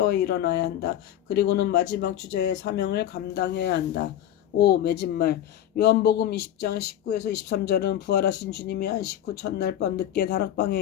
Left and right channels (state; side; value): quieter; right; 11.3 dB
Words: 일어나야 한다. 그리고는 마지막 주자의 사명을 감당해야 한다. 5. 맺은말 요한복음 20장 19에서 23절은 부활하신 주님이 안식 후 첫날 밤 늦게 다락방에